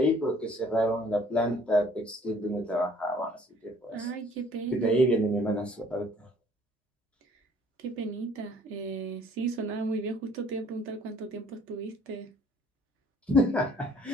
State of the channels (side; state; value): both; normal; correlation 0.57